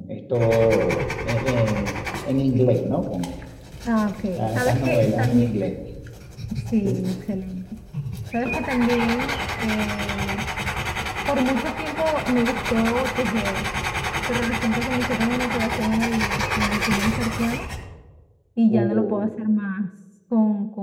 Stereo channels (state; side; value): identical; both; correlation 1.00